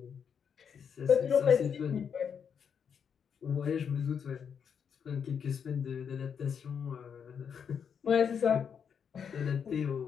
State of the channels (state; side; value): quieter; right; 7.2 dB